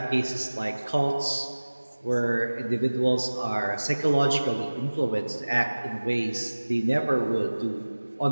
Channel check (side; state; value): both; inverted; correlation -1.00